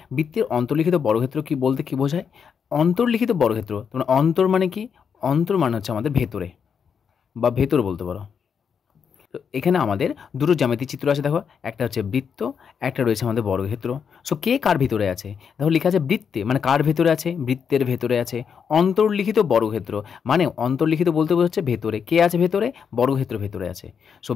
বৃত্তের অন্তর্লিখিত বর্গক্ষেত্র কি বলতে কি বোঝায়? অন্তর্লিখিত বর্গক্ষেত্র, তোমরা অন্তর মানে কি? অন্তর মানে হচ্ছে আমাদের ভেতরে বা ভেতর বলতে পারো। তো এখানে আমাদের দুটো জ্যামিতিক চিত্র আছে, দেখো, একটা হচ্ছে বৃত্ত, একটা রয়েছে আমাদের বর্গক্ষেত্র। সো কে কার ভিতরে আছে? দেখো লেখা আছে বৃত্তে, মানে কার ভেতরে আছে? বৃত্তের ভেতরে আছে। অন্তর্লিখিত বর্গক্ষেত্র মানে অন্তর্লিখিত বলতে বোঝাচ্ছে ভেতরে। কে আছে ভেতরে? বর্গক্ষেত্র ভেতরে আছে। সো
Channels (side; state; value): right; quieter; 6.9 dB